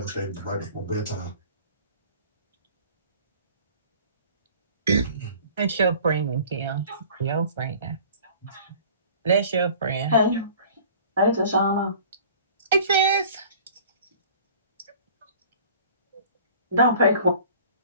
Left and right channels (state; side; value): inverted; both; correlation -0.47